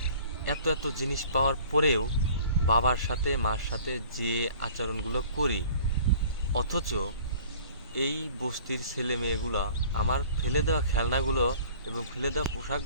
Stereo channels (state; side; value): inverted; both; correlation -0.49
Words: এত এত জিনিস পাওয়ার পরেও বাবার সাথে মার সাথে যে আচরণগুলো করি, অথচ এই বস্তির ছেলে মেয়েগুলো আমার ফেলে দেওয়া খেলনাগুলো এবং ফেলে দেওয়া